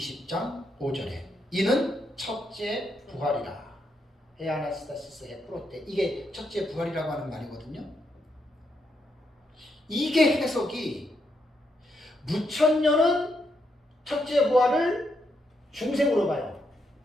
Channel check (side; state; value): both; normal; correlation 0.80